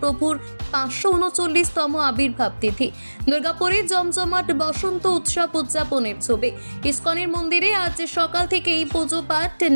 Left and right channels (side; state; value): both; inverted; correlation -1.00